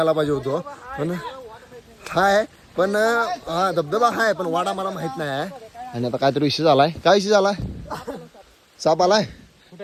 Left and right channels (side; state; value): both; identical; correlation 1.00